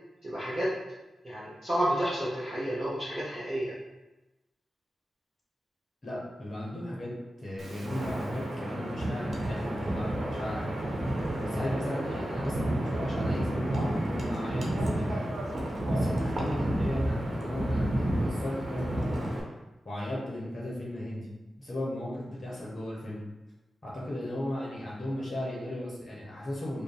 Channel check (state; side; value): normal; both; correlation 0.92